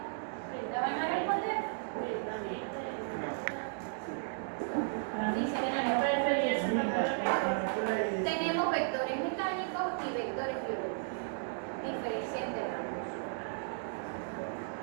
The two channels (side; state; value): left; silent; 55 dB below the other